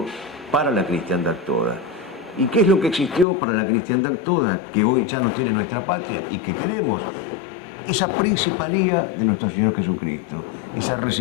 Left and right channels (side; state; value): right; drops out; at 3.2 s